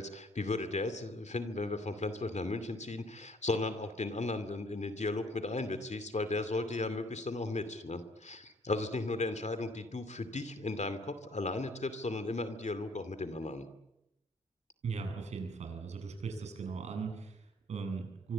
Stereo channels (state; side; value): normal; both; correlation 0.60